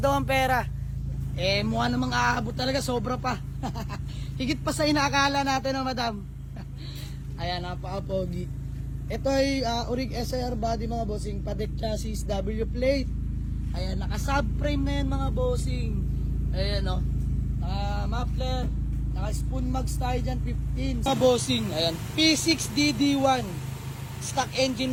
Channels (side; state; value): both; identical; correlation 1.00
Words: ang pera. Eh mukha namang aabot talaga. Sobra pa. Higit pa sa inaakala natin no madam. Ayan, napaka-pogi. Ito ay Urig SIR body mga bossing. Patek chassis, W plate. Ayan, naka-subframe na yan mga bossing. Ayan o. Muffler. Naka-spoon mags tayo dyan, 15. Mga bossing, ayan. P6DD1. Stock engine